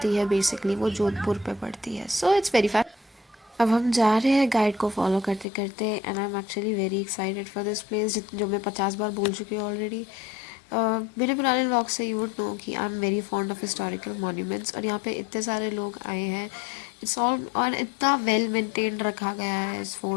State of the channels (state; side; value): drops out; right; at 5.5 s